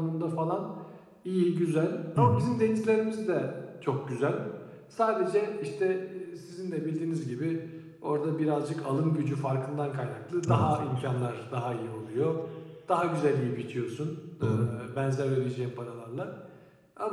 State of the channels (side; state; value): both; identical; correlation 1.00